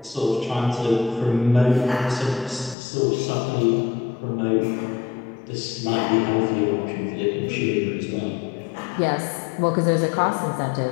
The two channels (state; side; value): drops out; right; at 2.8 s